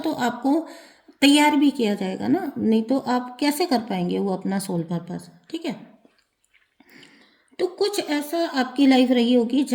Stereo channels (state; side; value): identical; both; correlation 1.00